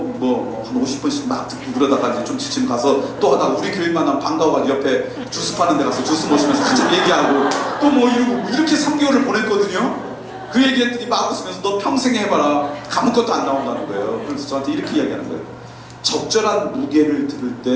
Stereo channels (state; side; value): identical; both; correlation 1.00